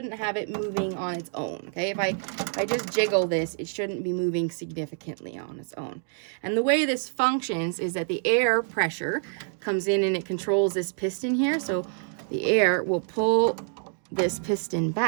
have it moving on its own, okay? If I just jiggle this, it shouldn't be moving significantly on its own. And the way this functions is that the air pressure comes in and it controls this piston here. So the air will pull this piston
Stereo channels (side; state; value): left; silent; 60 dB below the other